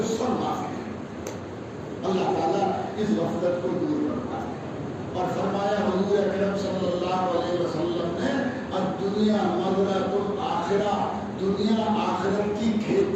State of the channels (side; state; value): both; identical; correlation 1.00